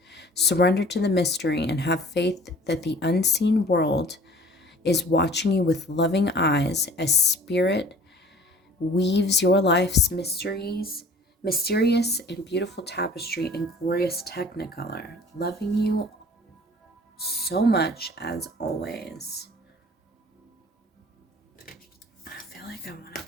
Surrender to the mystery and have faith that the unseen world is watching you with loving eyes as spirit weaves your life's mysterious and beautiful tapestry in glorious technicolor, loving you so much as always. I feel like I want to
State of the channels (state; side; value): normal; both; correlation 0.49